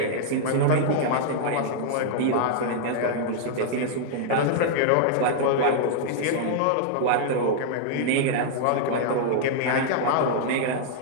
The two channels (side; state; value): both; different; correlation -0.01